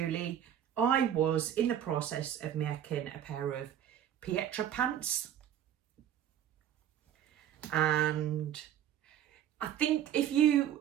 I was in the process of making a pair of Pietra pants, and I think if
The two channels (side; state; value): left; quieter; 10.5 dB